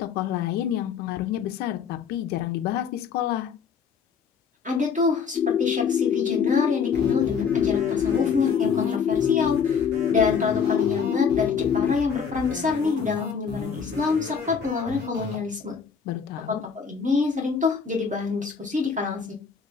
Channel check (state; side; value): quieter; right; 6.4 dB